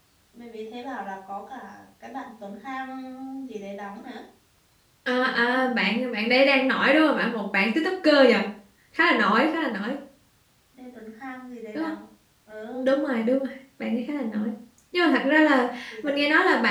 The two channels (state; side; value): identical; both; correlation 1.00